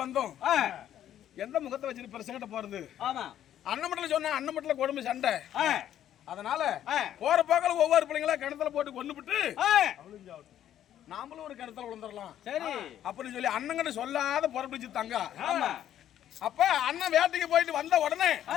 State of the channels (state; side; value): quieter; right; 11.1 dB